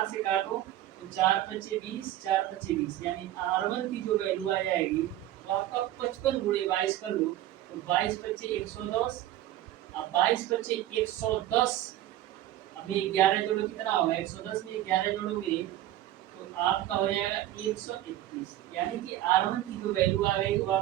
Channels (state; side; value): quieter; left; 13.8 dB